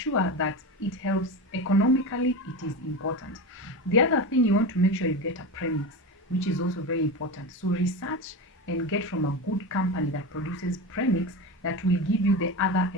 that it helps economically. It is important. The other thing, you want to make sure you get a premix, which is also very important. So research and get from a good company that produces premix that will give you the other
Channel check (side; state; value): both; normal; correlation 0.22